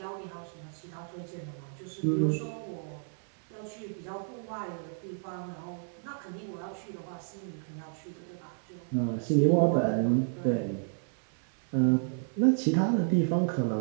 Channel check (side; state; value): left; silent; 57 dB below the other